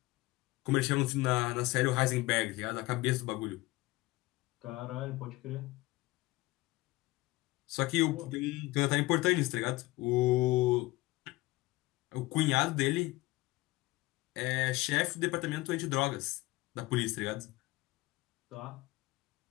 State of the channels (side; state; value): right; quieter; 20.1 dB